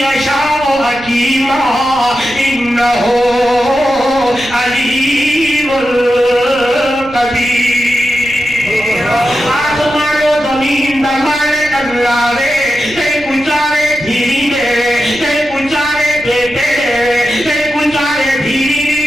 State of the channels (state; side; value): noise; right; rumble, 20 dB below the sound